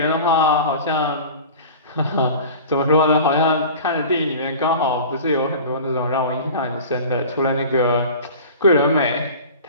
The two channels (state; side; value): inverted; both; correlation -0.38